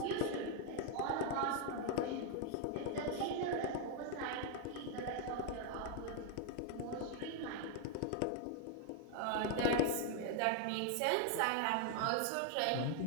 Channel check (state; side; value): different; both; correlation 0.01